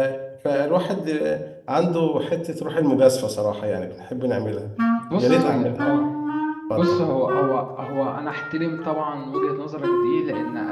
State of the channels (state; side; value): identical; both; correlation 1.00